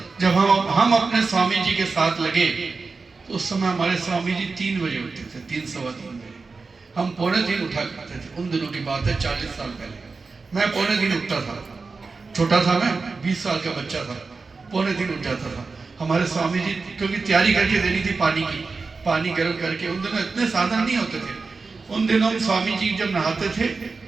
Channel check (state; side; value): quieter; left; 4.3 dB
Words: जब हम अपने स्वामी जी के साथ लगे तो उस समय हमारे स्वामी जी 3 बजे उठते थे, 3 सवा 3 बजे। हम 2:45 उठा करते थे। उन दिनों की बात है, 40 साल पहले। मैं 2:45 उठता था, छोटा था मैं, 20 साल का बच्चा था, 2:45 उठ जाता था। हमारे स्वामी जी, क्योंकि तैयारी करके देनी थी पानी की, पानी गर्म करके। उन दिनों इतने साधन नहीं होते थे। उन दिनों स्वामी जी जब नहाते थे